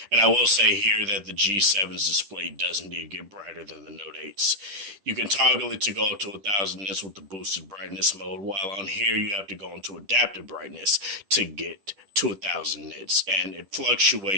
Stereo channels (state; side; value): late; left; 10 ms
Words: And I will say here that the G7's display does indeed get brighter than the Note 8's. You can toggle it to go up to 1000 nits with the boosted brightness mode, while on here you have to go into adaptive brightness to get to 1000 nits, and it